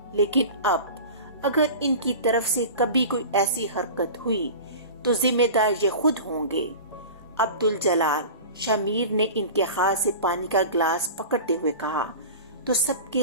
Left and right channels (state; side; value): inverted; both; correlation -0.35